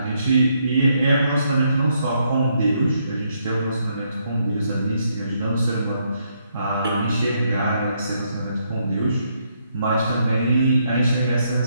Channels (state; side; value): inverted; both; correlation -0.75